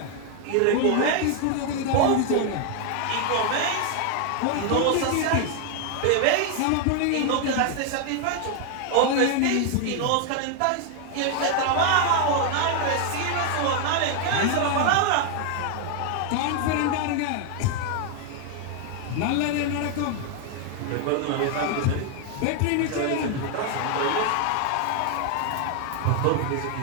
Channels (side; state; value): both; different; correlation 0.00